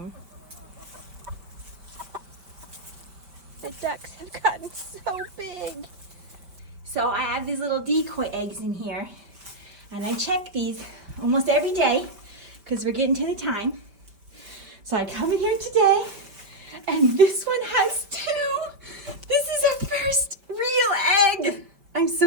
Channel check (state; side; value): late; left; 5.2 ms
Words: The ducks have gotten so big. So I have these little decoy eggs in here, and I check these almost every day because we're getting to the time. So I come in here today, and this one has 2. This is our first real egg. I'm